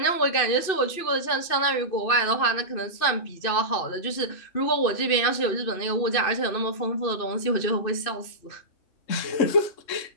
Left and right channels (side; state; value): right; late; 2.6 ms